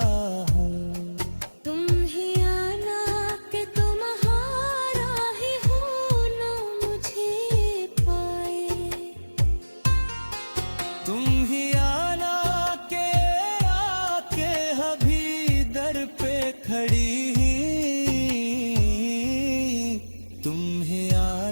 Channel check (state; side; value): inverted; both; correlation -1.00